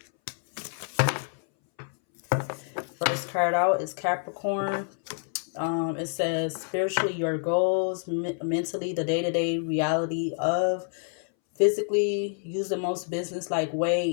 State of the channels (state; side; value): silent; right; 60 dB below the other